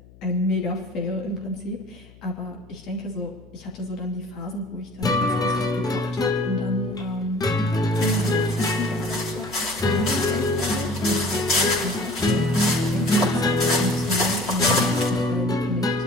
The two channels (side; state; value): left; noise; hum, 23 dB below the sound